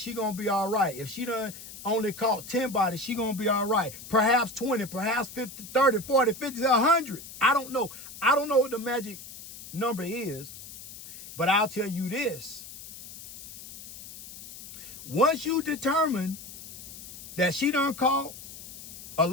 gonna be all right. If she done only caught 10 bodies, she gonna be all right. Perhaps 20, perhaps 50, 30, 40, 50, 100. I don't know. I don't know what the magic number is, but I'll tell you this. Once you determine that she done caught a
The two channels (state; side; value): noise; left; hiss, 14 dB below the sound